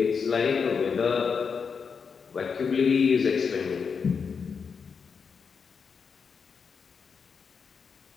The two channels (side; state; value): right; quieter; 5.9 dB